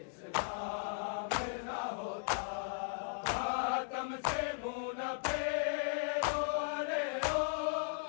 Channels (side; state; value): right; silent; digital silence